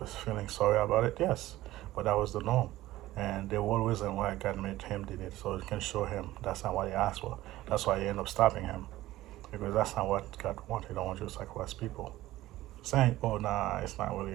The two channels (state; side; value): quieter; left; 16.1 dB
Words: feeling sorry about it? Yes, but that was the norm. And the whole reason why God made him did it, so it can show him that's not what he asked for. That's why he ended up stopping him, because that's not what God wanted. He don't want you to sacrifice people. Saying, oh, nah, it's not really